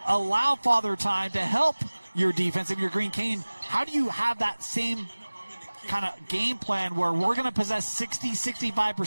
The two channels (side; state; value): both; inverted; correlation -1.00